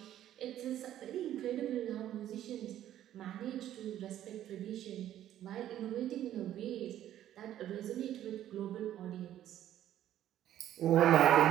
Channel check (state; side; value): quieter; left; 12.0 dB